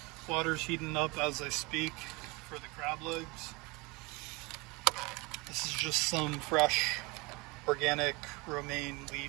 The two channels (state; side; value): quieter; left; 25.7 dB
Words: water's heating up as I speak for the crab legs. This is just some fresh, organic romaine